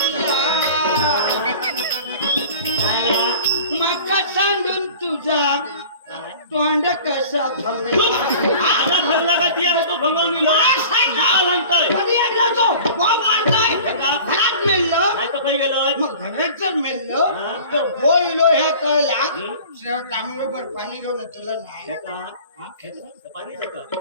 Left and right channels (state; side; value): inverted; both; correlation -0.42